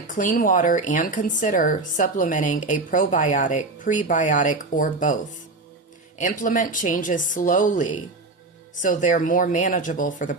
clean water and consider supplementing a probiotic, prebiotic, or both. Implement changes slowly so they're more manageable for the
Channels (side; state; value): left; quieter; 3.3 dB